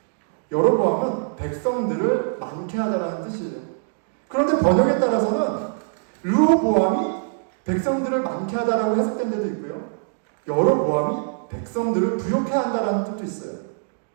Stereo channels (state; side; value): silent; left; digital silence